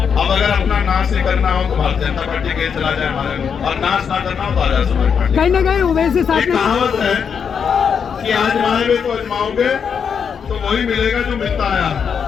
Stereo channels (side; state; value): right; quieter; 6.9 dB